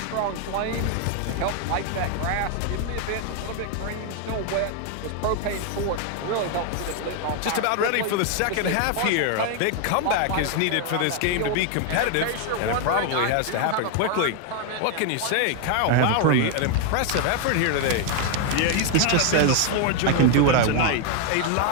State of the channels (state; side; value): different; both; correlation 0.00